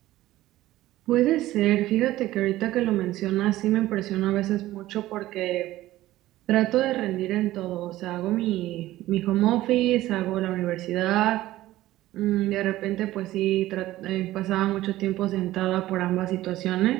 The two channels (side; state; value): left; quieter; 15.8 dB